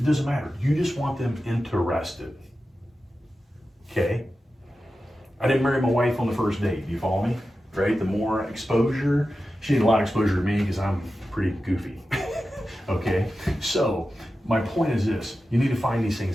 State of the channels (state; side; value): normal; both; correlation 0.92